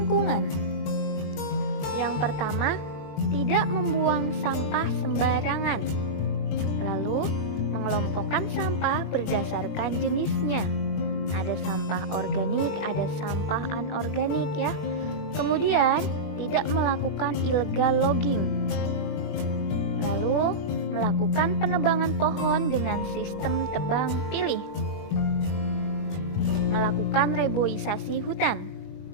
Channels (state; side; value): late; right; 21 ms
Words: Yang pertama, tidak membuang sampah sembarangan. Lalu, mengelompokkan sampah berdasarkan jenisnya. Ada sampah organik, ada sampah anorganik, ya. Kemudian, tidak melakukan illegal logging. Lalu, melakukan penebangan pohon dengan sistem tebang pilih. Melakukan reboisasi hutan.